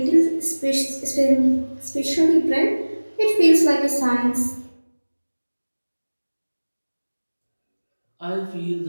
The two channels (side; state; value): both; inverted; correlation -1.00